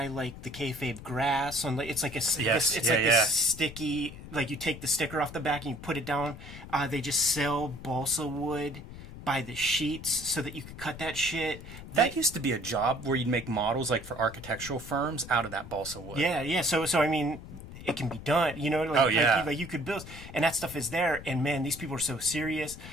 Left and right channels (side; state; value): left; noise; rumble, 14 dB below the sound